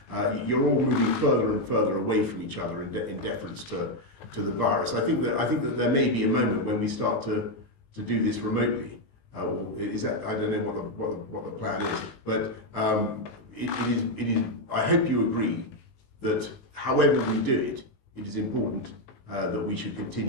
You're all moving further and further away from each other in deference to the virus. I think that there may be a moment when we start to do this remotely. Is that, I don't know what the plan is, but it is. I hope you agree that however we do it, it is important that we should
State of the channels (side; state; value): right; late; 19 ms